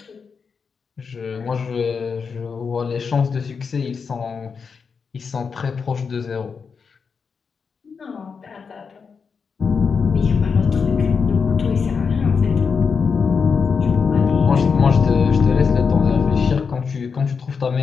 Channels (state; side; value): quieter; right; 5.6 dB